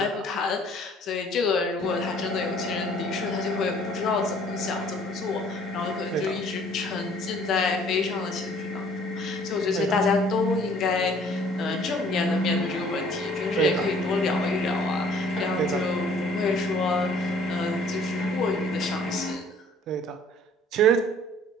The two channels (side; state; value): both; normal; correlation 0.56